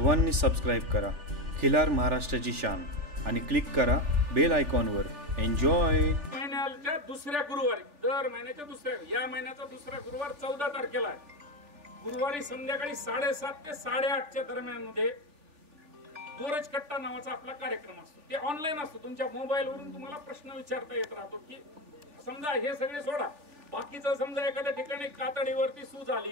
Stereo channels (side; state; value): left; late; 3.4 ms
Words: सबस्क्राईब करा खिलार महाराष्ट्राची शान आणि क्लिक करा बेल आयकॉनवर. एन्जॉय. महिन्याच्या दुसऱ्या गुरुवारी, दर महिन्याच्या दुसऱ्या, या महिन्याचा दुसरा गुरुवार 14 तारखेला आहे. गुरुवारी संध्याकाळी 7:30 ते 8:30च्या दरम्यान मध्ये गोरज कट्टा नावाचा आपला कार्यक्रम असतो. ते ऑनलाईन असतो. तुमच्या मोबाईलवरून तुम्हाला प्रश्न विचारता येत राहतो की समजा हे सगळे सोडा, बाकीचं समजा एखाद्या ठिकाणी कातडीवरती सूज